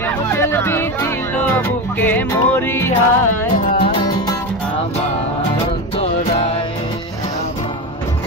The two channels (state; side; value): normal; both; correlation 0.19